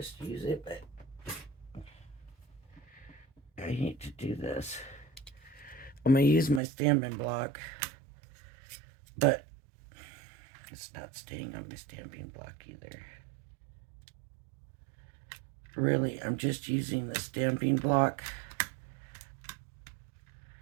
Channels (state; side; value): drops out; left; at 6.6 s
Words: use it, but I hate to do this. I'm going to use my stamping block, but it's not staying on my stamping block either. Really, I'm just using the stamping block